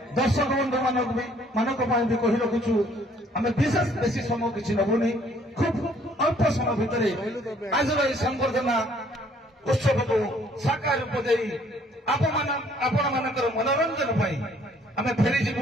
दर्शक बंधु मानक भी कही रखुचु आम विशेष बेसी समय किसी नबुनी खूब अल्प समय भितर आज संबर्धना उत्सव को साकार रूप दे आपण मानकर मनोरंजन आम फेरी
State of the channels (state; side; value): normal; both; correlation 0.61